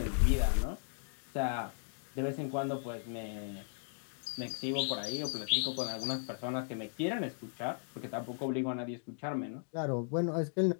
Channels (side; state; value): right; silent; digital silence